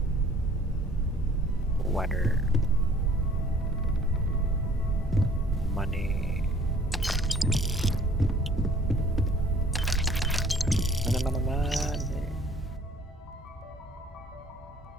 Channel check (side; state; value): both; normal; correlation 0.55